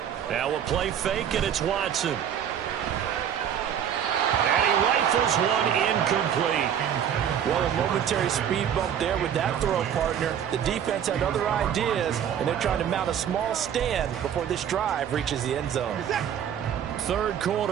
Now a play fake, and it's Watson. And he rifles one incomplete. Well, a momentary speed bump there with that throw, partner. The defense had other ideas, and they're trying to mount a small stand before this drive reaches the end zone. Third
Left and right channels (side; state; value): left; quieter; 9.1 dB